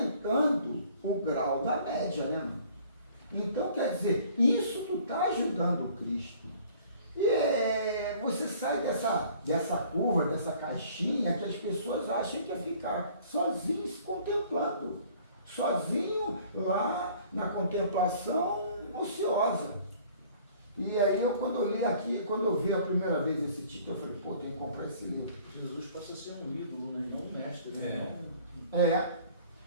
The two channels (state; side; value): inverted; both; correlation -0.53